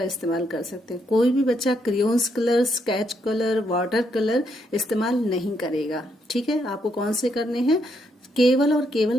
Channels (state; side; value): normal; both; correlation 0.76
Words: इस्तेमाल कर सकते हैं। कोई भी बच्चा crayons colour, sketch colour, water colour इस्तेमाल नहीं करेगा। ठीक है, आपको कौन से करने हैं, केवल और केवल